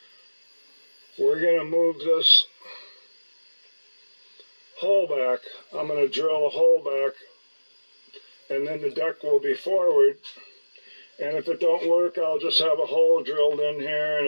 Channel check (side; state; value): both; inverted; correlation -1.00